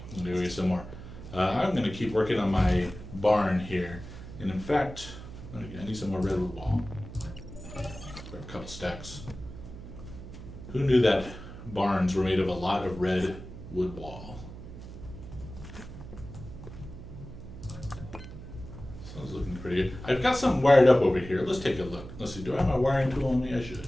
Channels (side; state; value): right; noise; hum, 13 dB below the sound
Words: I'm going to go get some more. I'm going to keep working on my barn here. And in fact, I need some more redwood wall. Grab a couple stacks. Who knew that barns were made of a lot of redwood wall? Sounds looking pretty good. I've got something wired up over here. Let's take a look. Let's see. Do I have my wiring tool on me? I